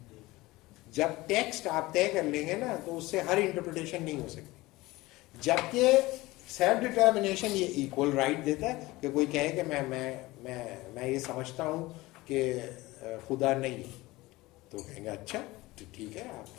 جب ٹیکسٹ آپ طے کر لیں گے نا تو اس سے ہر انٹرپریٹیشن نہیں ہو سکتی. جبکہ سیلف ڈٹرمنیشن یہ ایکول رائٹ دیتا ہے کہ کوئی کہے کہ میں یہ سمجھتا ہوں کہ خدا نہیں ہے, تو کہیں گے اچھا تو ٹھیک ہے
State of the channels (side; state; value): right; quieter; 20.0 dB